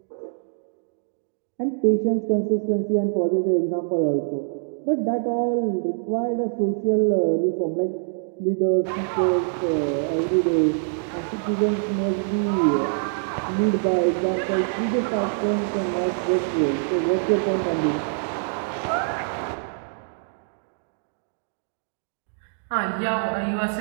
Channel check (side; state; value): left; silent; digital silence